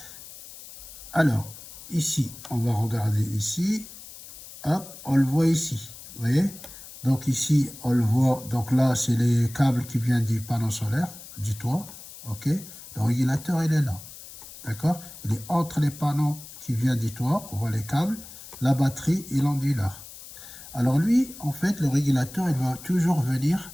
Alors, ici, on va regarder ici. Hop, on le voit ici. Vous voyez? Donc ici, on le voit. Donc là, c'est les câbles qui viennent du panneau solaire, du toit. OK? Le régulateur, il est là. D'accord? Il est entre les panneaux qui viennent du toit. On voit les câbles, la batterie et l'onduleur. Alors lui, en fait, le régulateur, il va toujours venir.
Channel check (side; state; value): left; noise; hiss, 16 dB below the sound